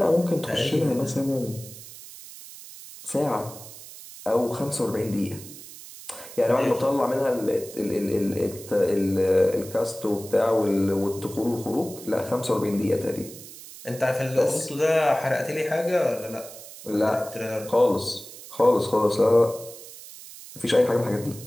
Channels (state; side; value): noise; right; hiss, 16 dB below the sound